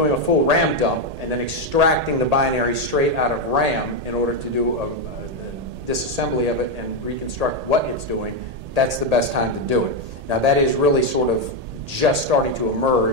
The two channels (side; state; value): left; late; 1.8 ms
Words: a full RAM dump and then extracting the binary straight out of RAM in order to do a disassembly of it and reconstruct what it's doing, that's the best time to do it. Now, that is really sort of just starting to